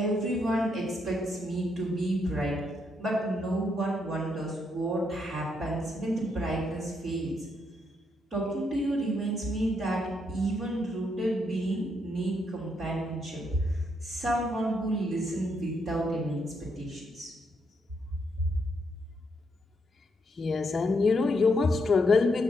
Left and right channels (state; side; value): normal; both; correlation 0.77